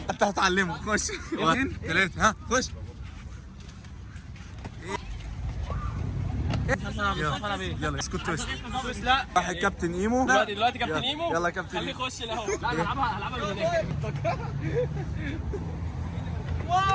انت هتعلمه. خش 2 3 ها خش. يلا اسكت تويست. لا راح الكابتن ايمو. دلوقتي كابتن ايمو. يلا كابتن خليه ايمو. يخش الاول. لا هلعبها من هناك.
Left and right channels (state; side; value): identical; both; correlation 1.00